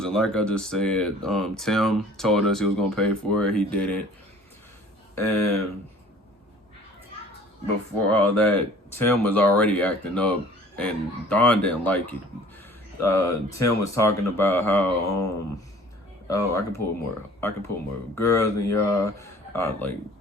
and like I just said, Tim told us he was gonna pay for it. He didn't. And before all that, Tim was already acting up, and Don didn't like it. Tim was talking about how oh, I can pull more girls than y'all, like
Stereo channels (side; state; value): both; normal; correlation 0.50